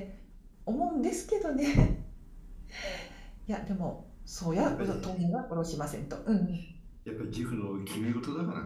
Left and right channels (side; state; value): both; identical; correlation 1.00